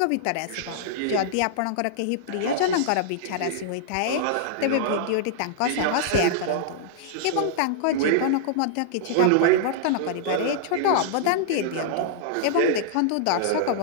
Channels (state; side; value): different; both; correlation -0.02